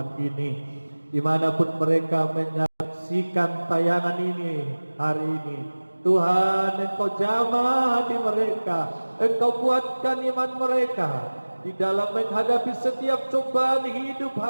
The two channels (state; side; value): inverted; both; correlation -1.00